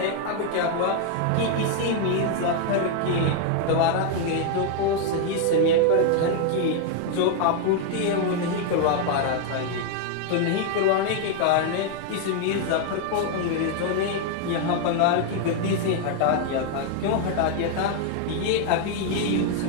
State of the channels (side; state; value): both; different; correlation 0.00